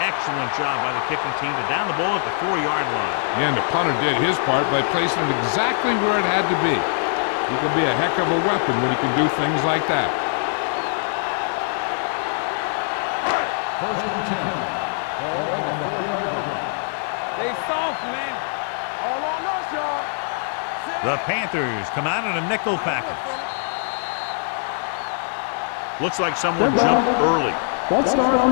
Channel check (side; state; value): right; silent; digital silence